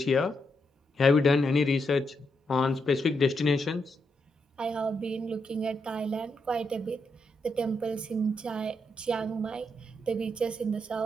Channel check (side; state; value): both; normal; correlation 0.81